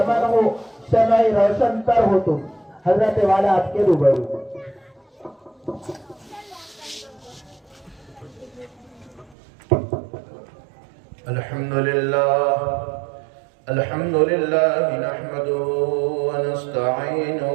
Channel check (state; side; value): drops out; left; at 9.3 s